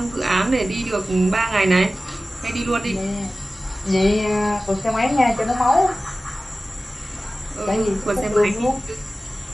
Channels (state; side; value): normal; both; correlation 0.96